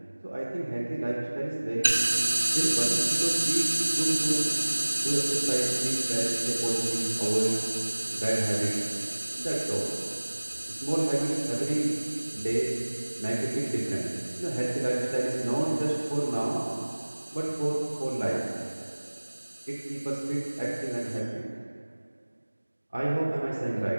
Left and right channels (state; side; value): inverted; both; correlation -1.00